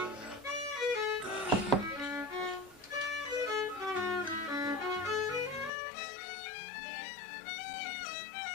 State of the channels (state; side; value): drops out; right; at 5.7 s